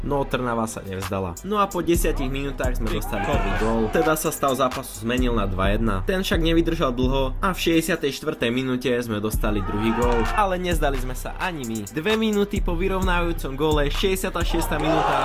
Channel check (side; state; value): both; identical; correlation 1.00